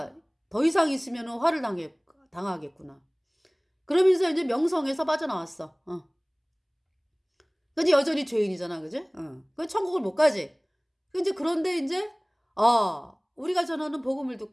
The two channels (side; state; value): both; identical; correlation 1.00